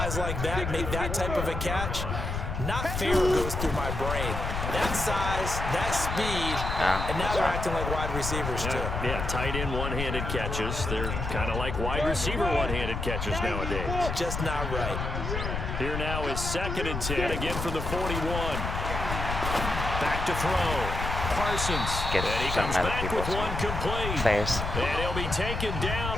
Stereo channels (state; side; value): noise; left; rumble, 4 dB below the sound